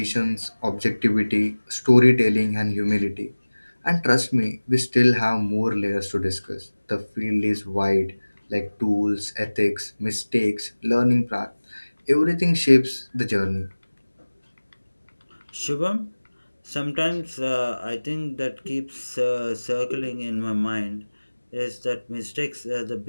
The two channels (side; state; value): both; inverted; correlation -1.00